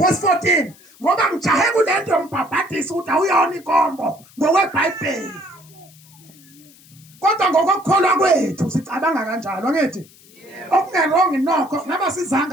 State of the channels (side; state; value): left; noise; hiss, 26 dB below the sound